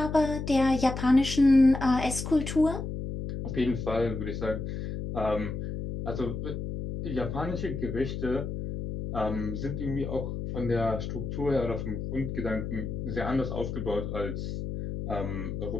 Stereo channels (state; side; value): noise; left; hum, 5 dB below the sound